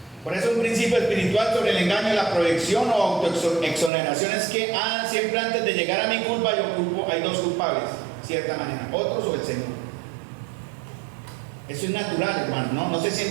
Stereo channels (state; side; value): drops out; left; at 3.9 s